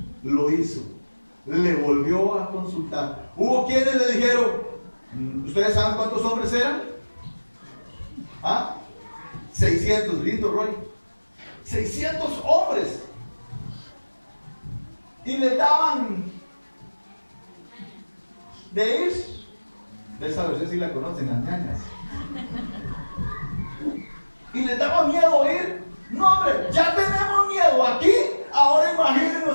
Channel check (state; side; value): inverted; both; correlation -1.00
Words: lo hizo. Le volvió a consultar. Hubo quienes le dijeron, ¿ustedes saben cuántos hombres eran? ¿Ah? 600, lindo Roy. 600 hombres. Y le daban de ir. Ustedes sí la conocen, las ñañas. Y les daba miedo ir. No, hombre, ya tenemos miedo aquí. Ahora